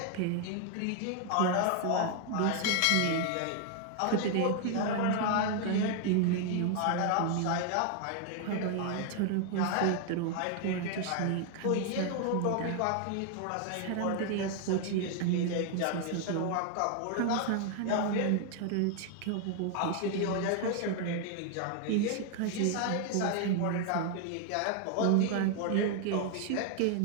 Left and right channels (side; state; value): both; different; correlation 0.00